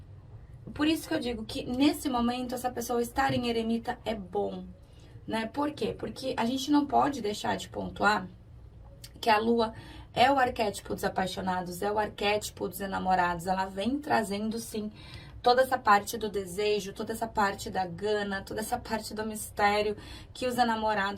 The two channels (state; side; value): identical; both; correlation 1.00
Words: Por isso que eu digo que nesse momento essa pessoa estar em eremita é bom, né? Por quê? Porque a gente não pode deixar de pontuar que a lua é o arquétipo dos apaixonados, é o arquétipo dos enamorados. Ela vem trazendo, sim, toda essa parte do desejo, toda essa parte da gana, toda essa parte do mistério que os